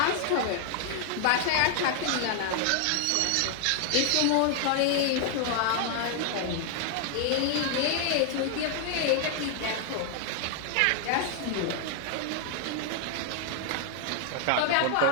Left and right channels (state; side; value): different; both; correlation 0.00